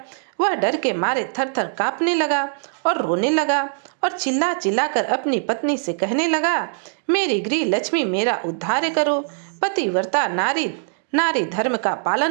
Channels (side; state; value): left; silent; 64 dB below the other